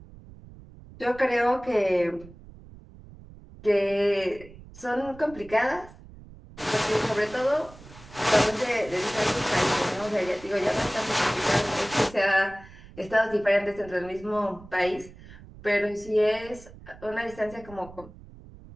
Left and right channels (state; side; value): noise; right; rumble, 19 dB below the sound